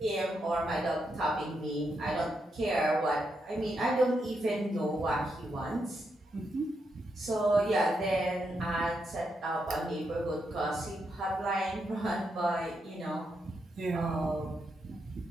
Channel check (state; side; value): normal; both; correlation 0.82